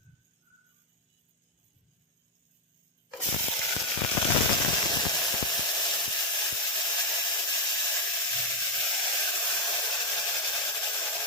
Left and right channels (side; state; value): both; normal; correlation 0.04